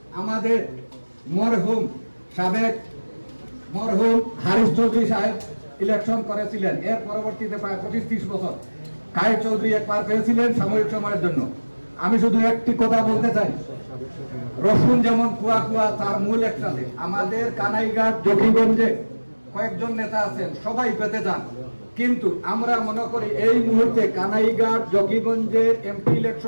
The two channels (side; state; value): both; inverted; correlation -1.00